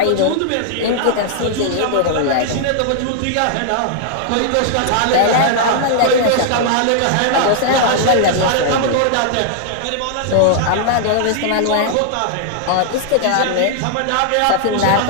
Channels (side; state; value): both; different; correlation -0.01